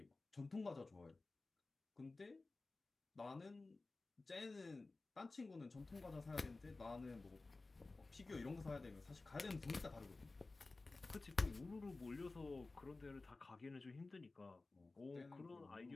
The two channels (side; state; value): right; quieter; 3.4 dB